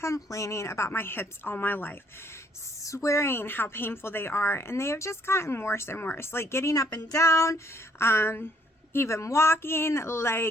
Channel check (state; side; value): normal; both; correlation 0.66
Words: about my hips all my life, swearing how painful they are, and they have just gotten worse and worse. Like getting up and down, even walking,